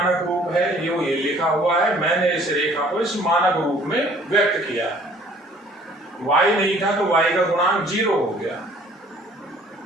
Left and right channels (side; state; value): both; normal; correlation 0.56